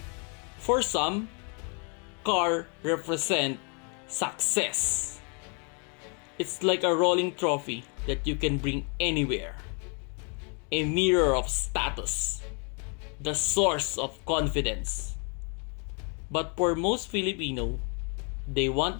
For some, car represent success. It's like a rolling trophy that you can bring anywhere. A mirror of status. The source of confidence. But for most Filipino, they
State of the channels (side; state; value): right; quieter; 37.2 dB